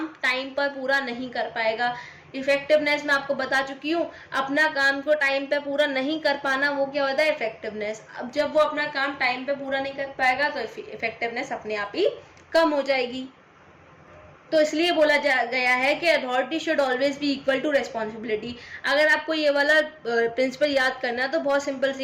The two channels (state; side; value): identical; both; correlation 1.00